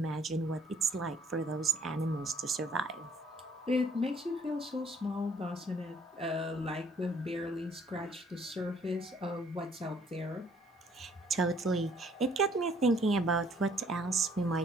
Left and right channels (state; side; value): normal; both; correlation 0.62